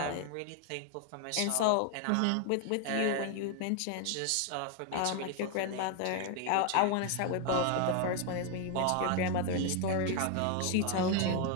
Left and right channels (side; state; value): both; different; correlation 0.01